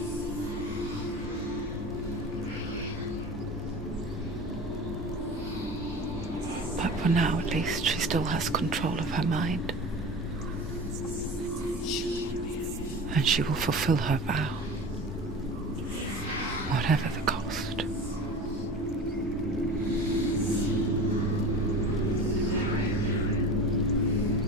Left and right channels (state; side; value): normal; both; correlation 0.34